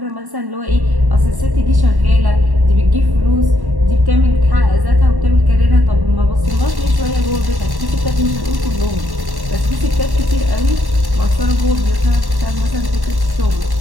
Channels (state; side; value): late; left; 1.1 ms